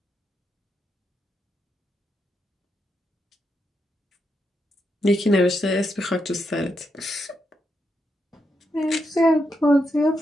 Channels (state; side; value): normal; both; correlation 0.83